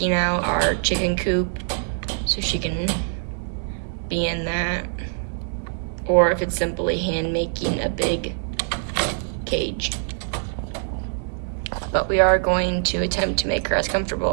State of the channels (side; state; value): left; silent; digital silence